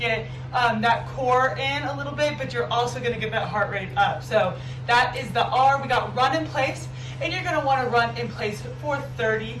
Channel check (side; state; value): both; identical; correlation 1.00